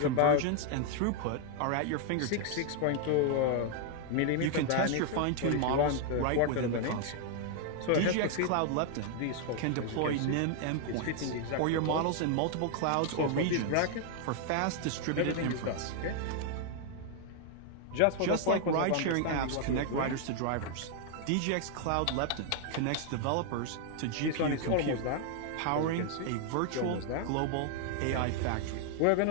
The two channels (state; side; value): different; both; correlation 0.00